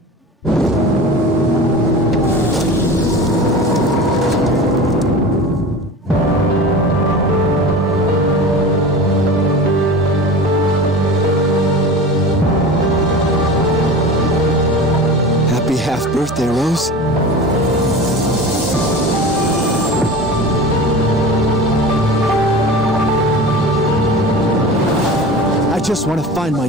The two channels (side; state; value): both; normal; correlation 0.34